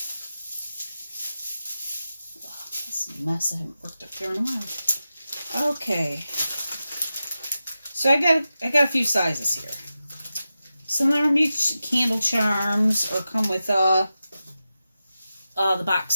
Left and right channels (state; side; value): inverted; both; correlation -0.91